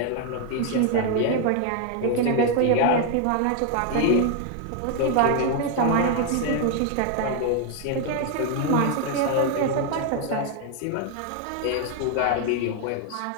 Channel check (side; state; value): both; different; correlation 0.00